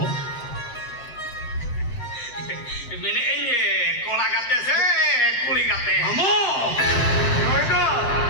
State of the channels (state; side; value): late; right; 7.9 ms